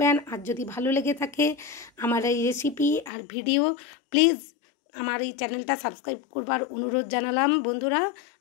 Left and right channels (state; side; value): drops out; right; at 3.1 s